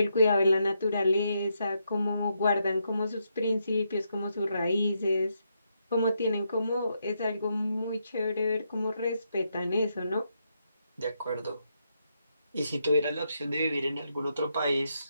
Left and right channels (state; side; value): inverted; both; correlation -0.80